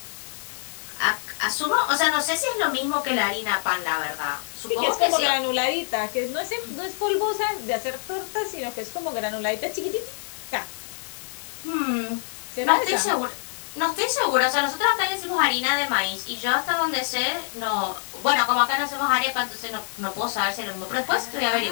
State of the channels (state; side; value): silent; right; 61 dB below the other